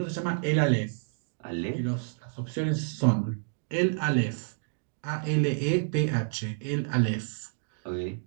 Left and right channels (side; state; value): left; silent; digital silence